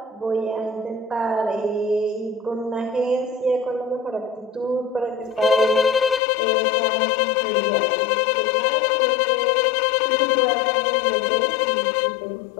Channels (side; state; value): right; drops out; at 6.2 s